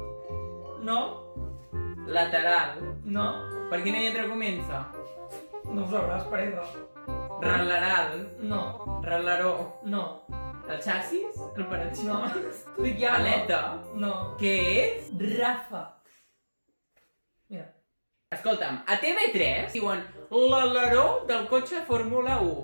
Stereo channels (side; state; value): both; inverted; correlation -1.00